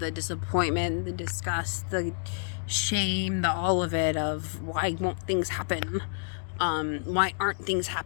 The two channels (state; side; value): silent; right; 59 dB below the other